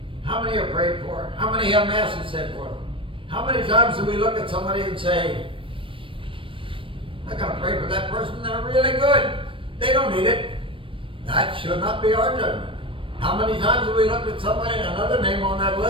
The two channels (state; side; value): late; left; 0.25 ms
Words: How many are prayed for? How many have masses said for them? How many times do we look at somebody and say, I gotta pray for that person, they're really good. They don't need it. That should not be our judgment. How many times have we looked at somebody, another name on that